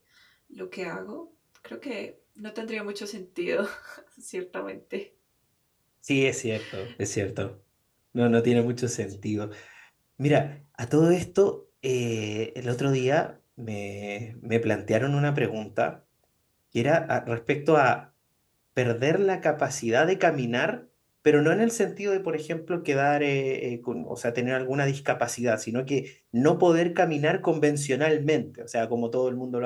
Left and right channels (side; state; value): both; identical; correlation 1.00